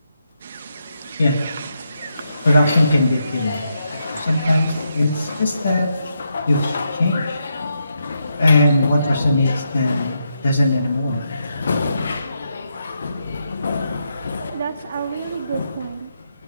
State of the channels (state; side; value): inverted; both; correlation -0.82